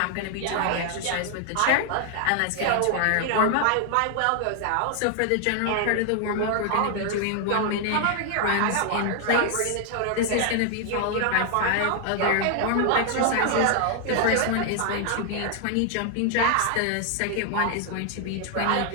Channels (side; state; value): both; different; correlation 0.00